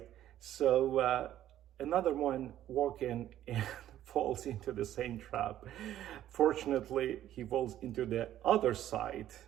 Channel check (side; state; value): left; quieter; 12.3 dB